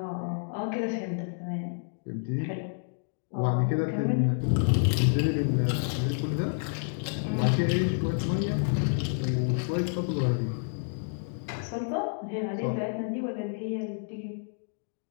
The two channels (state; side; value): silent; right; digital silence